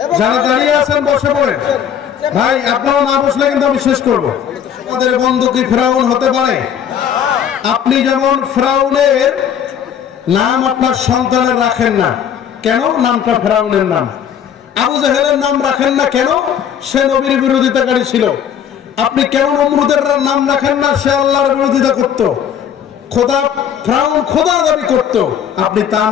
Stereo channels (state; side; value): quieter; right; 8.7 dB